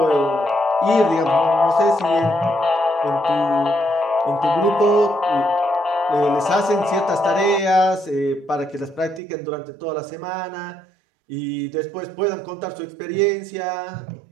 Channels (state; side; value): drops out; left; at 9.2 s